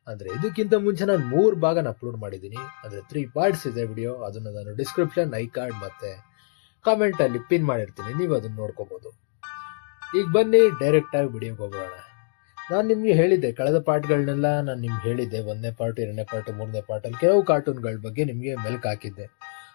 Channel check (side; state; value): right; silent; digital silence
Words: ಅಂದರೆ ಇದಕ್ಕಿಂತ ಮುಂಚೆ ನಾನು 3 ಭಾಗನ ಅಪ್ಲೋಡ್ ಮಾಡಿದ್ದೀನಿ. ಅಂದರೆ 3 ಪಾರ್ಟ್ಸ್ ಇದೆ ವಿಡಿಯೋ. ಅದನ್ನು ನಾನು ಡಿಸ್ಕ್ರಿಪ್ಷನ್, ಐ ಕಾರ್ಡ್ ಮತ್ತು ಕಾಮೆಂಟಲ್ಲಿ ಪಿನ್ ಮಾಡಿರ್ತೀನಿ, ನೀವು ಅದನ್ನು ನೋಡ್ಕೋಬೋದು. ಈಗ ಬನ್ನಿ ಡೈರೆಕ್ಟಾಗಿ ವಿಡಿಯೋಗೆ ಹೋಗೋಣ. ನಾನು ನಿಮಗೆ ಹೇಳಿದ್ದೆ, ಕಳೆದ ಪಾರ್ಟ್ಗಳನ್ನೆಲ್ಲ ನಾನು ನಿಮ್ಗೆ ಹೇಳಿದ್ದೆ. 1ನೇ ಪಾರ್ಟ್, 2ನೇ ಪಾರ್ಟ್, 3ನೇ ಪಾರ್ಟಲ್ಲಿ ಕೆಲವು ಕಾರ್ಟೂನ್ಗಳ ಬಗ್ಗೆ ನಿಮಗೆ ಮೆಲ್ಕು ಹಾಕಿದ್ದೆ.